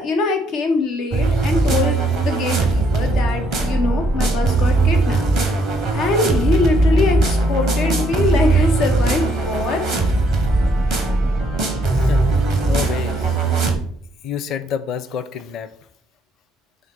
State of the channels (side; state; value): both; normal; correlation 0.70